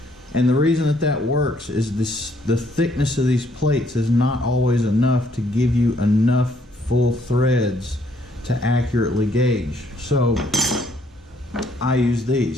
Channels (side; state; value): both; normal; correlation 0.68